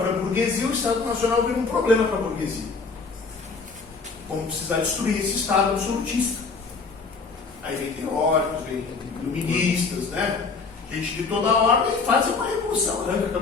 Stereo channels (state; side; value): quieter; right; 4.6 dB